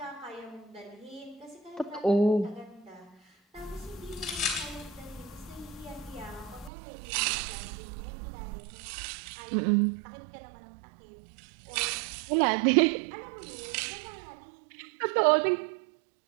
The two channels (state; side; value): drops out; left; at 6.7 s